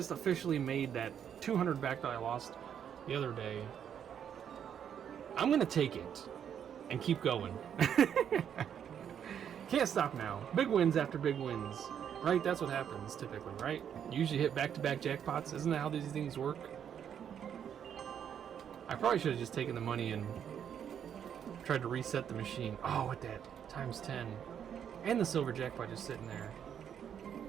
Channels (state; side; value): quieter; left; 8.7 dB